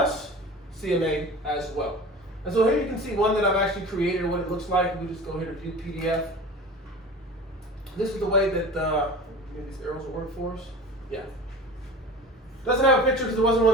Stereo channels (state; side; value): normal; both; correlation 0.37